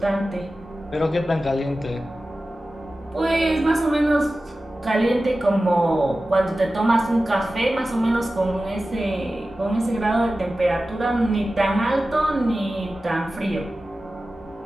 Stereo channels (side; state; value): both; normal; correlation 0.95